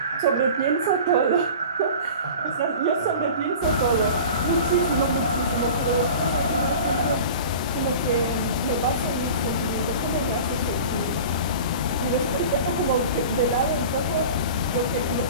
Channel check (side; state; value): both; inverted; correlation -0.38